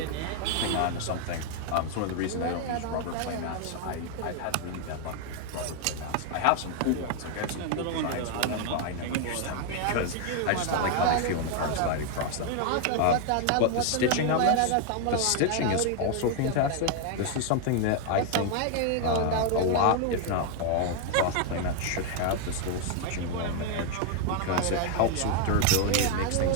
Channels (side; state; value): both; different; correlation 0.00